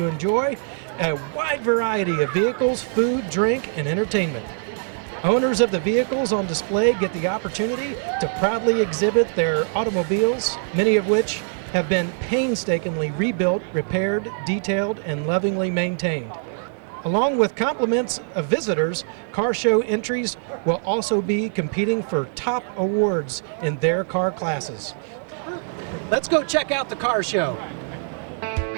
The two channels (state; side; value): silent; left; 63 dB below the other